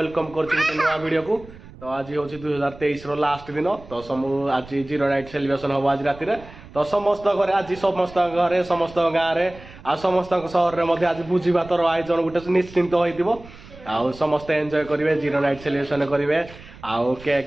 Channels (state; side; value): noise; right; rumble, 19 dB below the sound